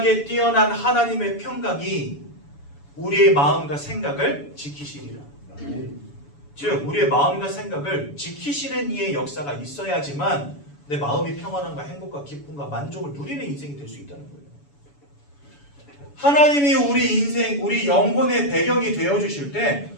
뛰어난 하나님의 평강이 우리의 마음과 생각을 지키시리라. 즉 우리의 마음과 생각을 지키시는 이의 역사가 있어야지만 내 마음이 평안함과 행복과 기쁨과 만족을 누리는 인생이 될 수 있다는 거예요. 하나님이 우리 인생, 우리 영혼의 배경이 되어주실 때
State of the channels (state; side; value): late; right; 7.0 ms